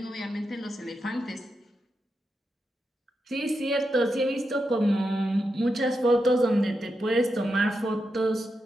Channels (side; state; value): both; normal; correlation 0.86